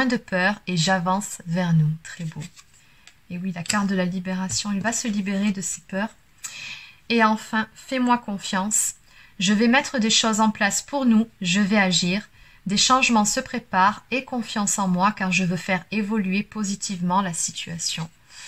de peur et j'avance vers nous. Très beau. Et oui, la carte de la libération, il va se libérer de ses peurs. Et enfin, fais-moi confiance. Je vais mettre des choses en place pour nous. Je vais agir. Des changements se préparent et confiance en moi car je veux faire évoluer positivement la situation.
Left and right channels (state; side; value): identical; both; correlation 1.00